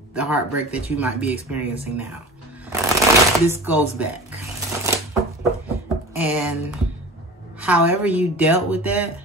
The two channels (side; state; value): both; normal; correlation 0.36